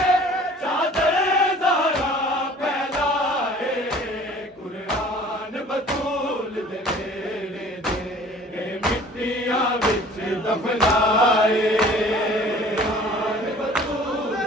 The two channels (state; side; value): normal; both; correlation 0.49